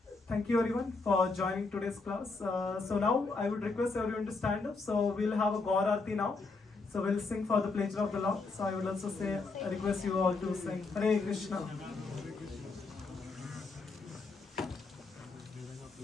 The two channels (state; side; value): quieter; right; 3.9 dB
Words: thank you everyone for joining today's class. So now I would request everyone to stand up. So we'll have a Gaur Aarti now. So we'll sing for the pleasure of the Lord. So I will also request you all to sing Hare Krishna.